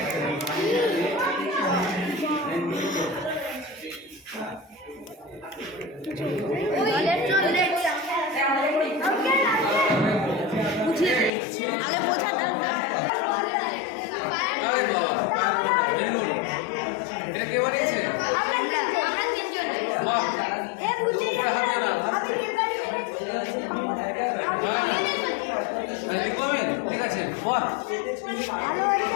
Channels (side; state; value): right; drops out; at 11.3 s